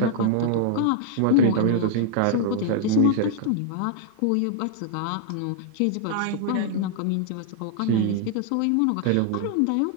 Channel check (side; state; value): both; different; correlation -0.01